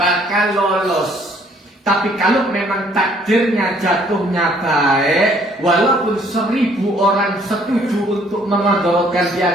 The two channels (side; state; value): both; normal; correlation 0.62